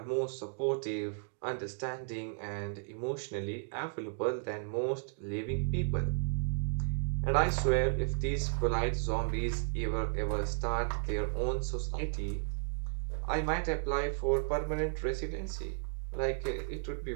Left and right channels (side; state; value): left; silent; 55 dB below the other